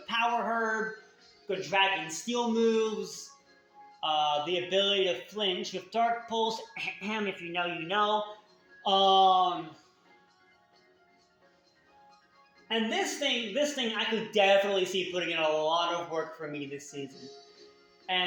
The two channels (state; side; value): identical; both; correlation 1.00